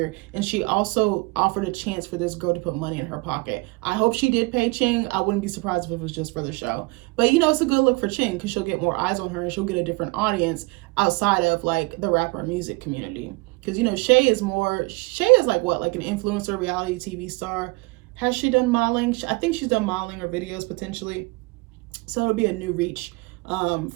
And she also offered a chance for this girl to put money in her pocket. I hope she did pay Ching. I wouldn't be surprised if it was just for the show. But, you know, it's a good look for Ching because she'll get more eyes on her and she'll get a different audience outside of like the rapper music community. Because, you know, Shay is like what, like an influencer, reality TV star. Has she done modeling? I think she's done modeling or videos potentially. So it'll be a new reach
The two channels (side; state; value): left; quieter; 25.9 dB